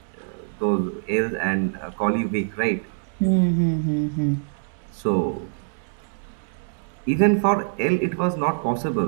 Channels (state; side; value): silent; left; digital silence